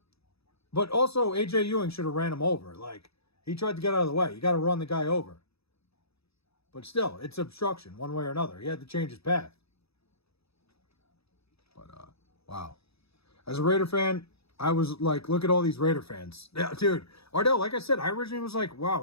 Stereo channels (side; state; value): right; late; 0.78 ms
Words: But also, A.J. Ewing should have ran him over. He tried to get out of the way. You got to run the guy over. But still, it's obstruction one way or another. He had to change his path. But, wow. As a Raider fan, I was like, look at all these Raider fans. Yeah, dude. Ardell, like I said, I originally was like, wow,